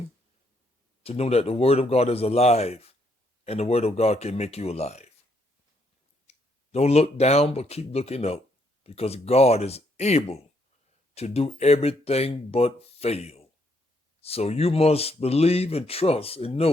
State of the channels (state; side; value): normal; both; correlation 0.73